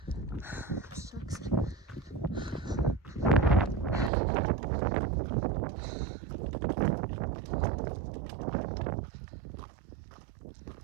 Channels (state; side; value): drops out; left; at 4.1 s